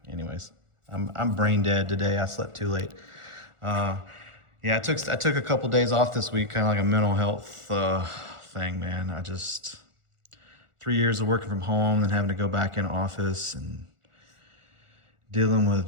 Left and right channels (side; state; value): left; late; 1.4 ms